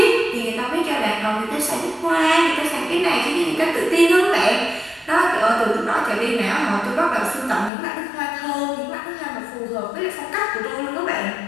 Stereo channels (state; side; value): drops out; right; at 7.7 s